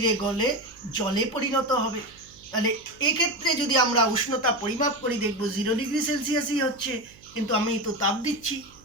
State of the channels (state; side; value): noise; right; hum, 25 dB below the sound